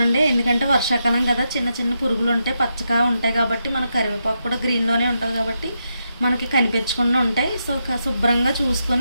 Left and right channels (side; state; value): both; inverted; correlation -0.84